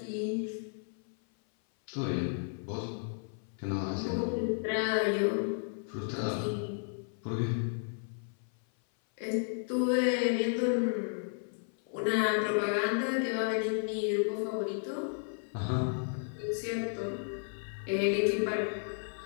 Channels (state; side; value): silent; right; 56 dB below the other